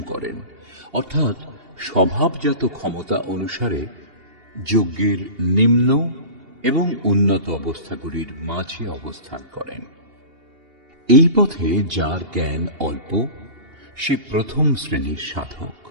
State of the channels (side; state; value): left; late; 2.8 ms